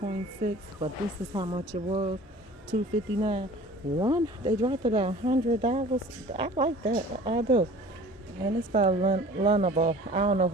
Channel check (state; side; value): normal; both; correlation 0.45